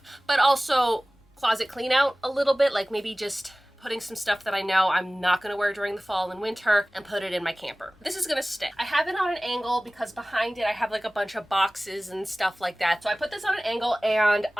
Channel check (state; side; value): normal; both; correlation 0.98